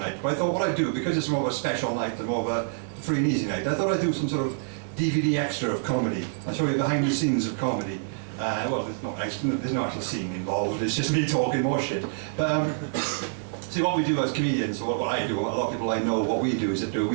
But I thought what I'd do, because it's more of a special night and more of a free and easy night, I thought I'd do some sort of DVD extra of comedy. I'll show you behind the scenes of comedy. Well, there's no actual scene involved, it's just me talking more shit. But see, what we do as comedians, or what I do, a lot of people I know, what we do is that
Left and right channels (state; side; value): silent; left; digital silence